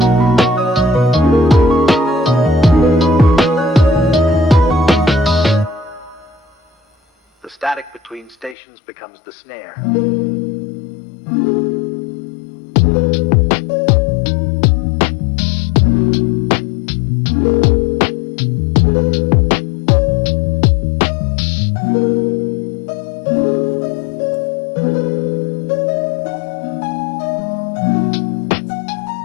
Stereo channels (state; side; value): drops out; right; at 8.6 s